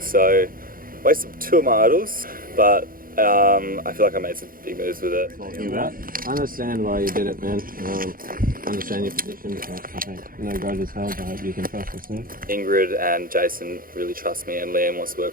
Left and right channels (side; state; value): left; late; 0.41 ms